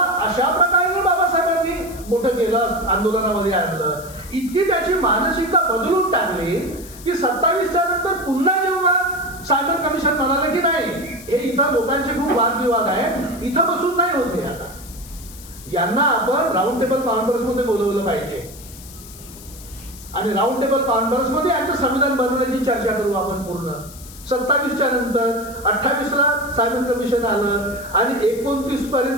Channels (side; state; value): left; noise; hiss, 18 dB below the sound